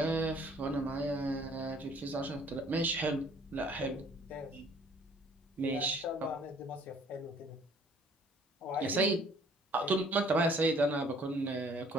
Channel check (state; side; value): normal; both; correlation 0.57